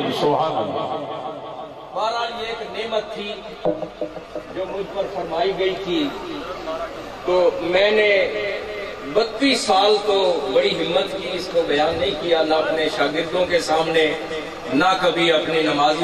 بہرحال یہ ایک نعمت تھی جو مجھ پر فرمائی گئی تھی، تو میں نے 32 سال تو بڑی ہمت کی، اس کو بیان نہیں کیا، نہ اپنے شاگردوں کے سامنے، نہ کبھی اپنے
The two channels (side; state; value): both; identical; correlation 1.00